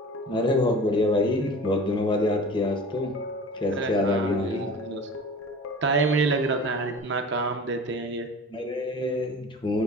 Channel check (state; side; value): normal; both; correlation 0.39